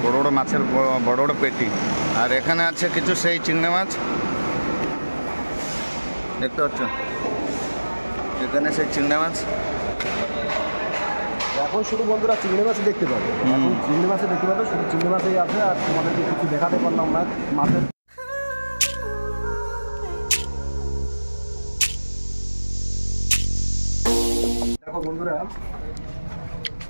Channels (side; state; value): both; inverted; correlation -1.00